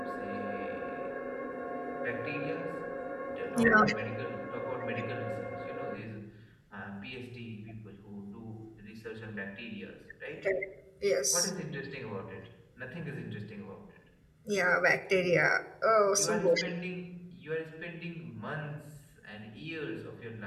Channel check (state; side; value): identical; both; correlation 1.00